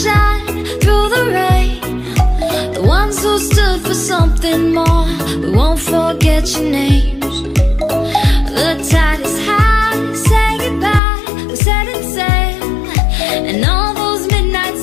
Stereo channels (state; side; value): drops out; right; at 11.0 s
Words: through the rain, the ones who stood for something more. We won't forget your names. The tide is high, say goodbye, we're setting sail, and all those midnight